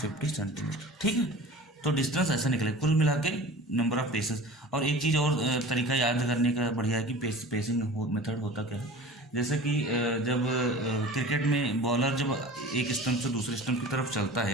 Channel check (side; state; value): both; normal; correlation 0.39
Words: सेंटीमीटर। ठीक है, तो डिस्टेंस ऐसा निकले कुल मिला के नंबर ऑफ पेसेस। और एक चीज़ और तरीका याद करने का बढ़िया है कि पेसिंग मेथड होता क्या है, जैसे कि जब क्रिकेट में बॉलर जब एक स्टंप से दूसरे स्टंप की तरफ चलता है,